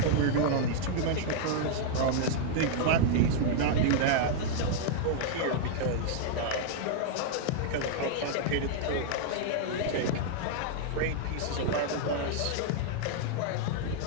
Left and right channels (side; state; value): both; different; correlation -0.01